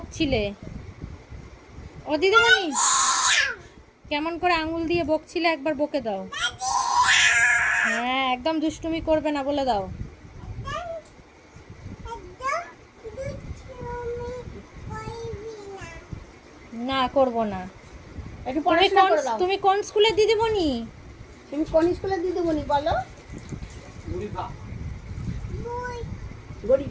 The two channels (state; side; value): identical; both; correlation 1.00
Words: ও দিদিমণি, কেমন করে আঙুল দিয়ে বকছিলে একবার বকে দাও। হ্যাঁ, একদম দুষ্টুমি করবে না বলে দাও। না, করব না। একটু পড়াশোনা করে দাও। তুমি কোন স্কুলের দিদিমণি? তুমি কোন স্কুলের দিদিমণি বলো?